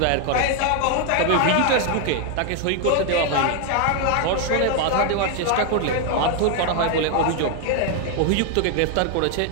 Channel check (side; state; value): both; different; correlation 0.01